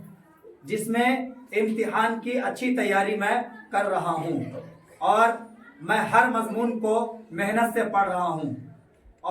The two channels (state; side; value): identical; both; correlation 1.00